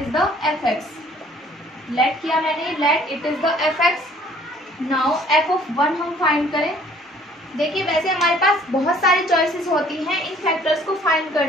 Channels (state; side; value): normal; both; correlation 0.56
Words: the fx, let किया मैंने, let it is the fx। Now f(1) हम फाइंड करें। देखिए वैसे हमारे पास बहुत सारी चॉइसेस होती हैं इन फैक्टर्स को फाइंड